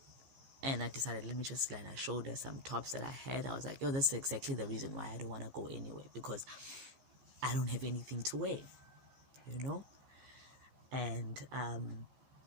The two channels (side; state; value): left; late; 14 ms